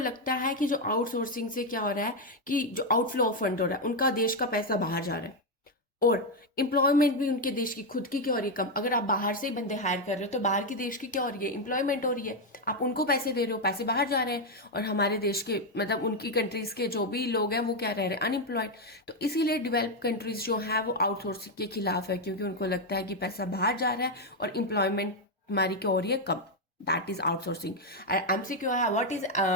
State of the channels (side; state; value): both; normal; correlation 0.04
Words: है कि जो आउटसोर्सिंग से क्या हो रहा है, कि जो आउटफ्लो ऑफ फंड हो रहा है, उनका देश का पैसा बाहर जा रहा है, और एम्प्लॉयमेंट भी उनके देश की खुद की क्या हो रही है, कम। अगर आप बाहर से ही बंदे हायर कर रहे हो तो बाहर की देश की क्या हो रही है, एम्प्लॉयमेंट हो रही है। आप उनको पैसे दे रहे हो, पैसे बाहर जा रहे हैं, और हमारे देश के मतलब उनकी कंट्रीज के जो भी लोग हैं वो क्या रह रहे हैं, अनएम्प्लॉयड। तो इसीलिए डेवलप कंट्रीज जो है वो आउटसोर्सिंग के खिलाफ है, क्योंकि उनको लगता है कि पैसा बाहर जा रहा है और एम्प्लॉयमेंट हमारी क्या हो रही है, कम। That is outsourcing. MCQ है, what is